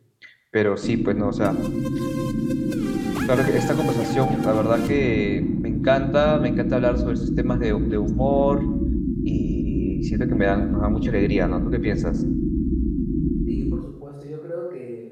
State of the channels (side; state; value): both; identical; correlation 1.00